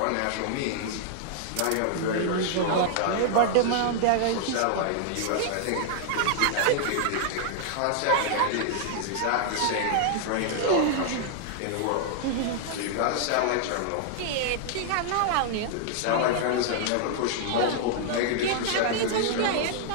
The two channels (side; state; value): both; different; correlation -0.01